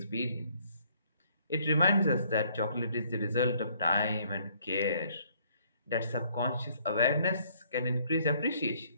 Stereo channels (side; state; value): both; inverted; correlation -0.64